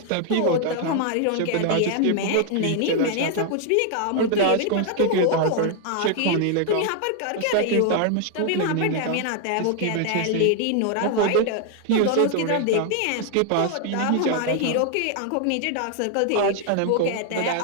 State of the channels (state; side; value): different; both; correlation 0.00